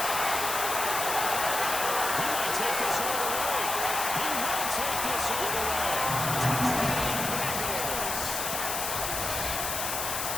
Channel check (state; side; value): noise; left; hiss, 2 dB below the sound